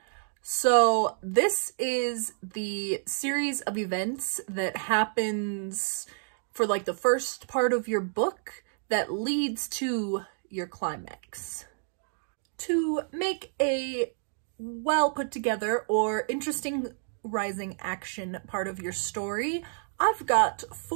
So this is the series of events that happens for like the first part of your book that leads to your climax. To make a well put together or interesting rising action part of your story, I've got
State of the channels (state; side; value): silent; left; digital silence